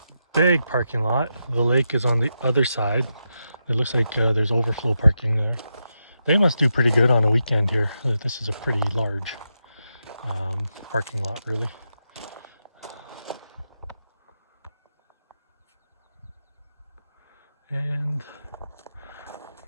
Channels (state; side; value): inverted; both; correlation -0.86